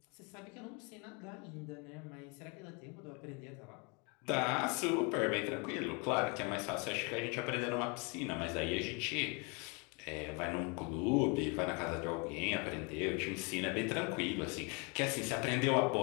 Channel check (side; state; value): right; quieter; 32.5 dB